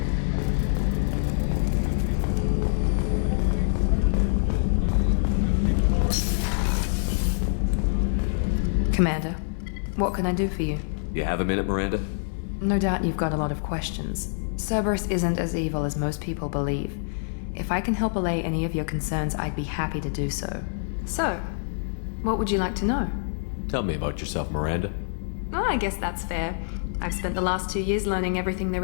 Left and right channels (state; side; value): silent; right; 56 dB below the other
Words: Commander, what can I do for you? You have a minute, Miranda? No doubt you've got a lot of questions. Cerberus isn't as evil as most people believe. If I can help allay any of your concerns, I'd be happy to do so. So, what would you like to know? Tell me about yourself, Miranda. Oh, I guess that's fair. I've spent the last 2 years learning everything